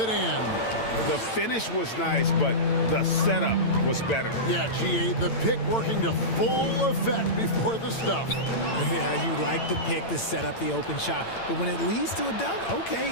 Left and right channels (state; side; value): late; right; 8.9 ms